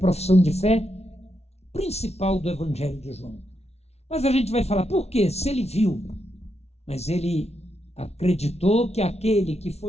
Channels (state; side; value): late; right; 0.31 ms